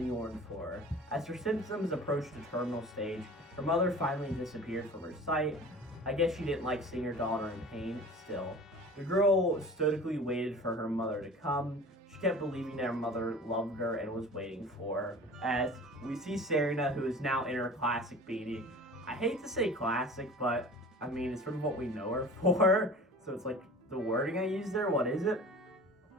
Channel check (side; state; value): both; normal; correlation 0.41